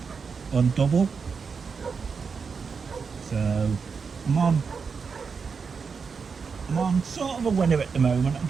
on double. So I'm on sort of a winner at the moment. I'm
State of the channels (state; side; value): quieter; left; 5.5 dB